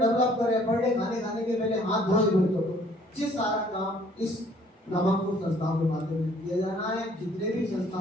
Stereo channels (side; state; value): both; normal; correlation 0.59